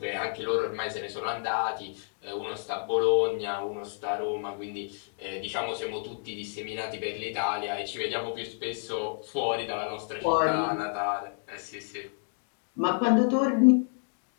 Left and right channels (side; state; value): right; silent; digital silence